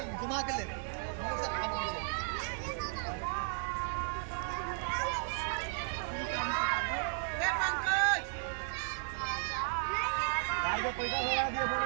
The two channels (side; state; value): left; silent; 55 dB below the other